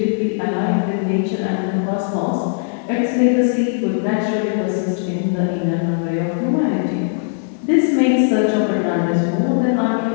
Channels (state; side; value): silent; right; digital silence